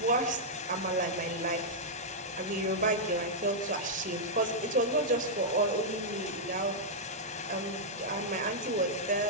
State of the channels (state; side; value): normal; both; correlation -0.08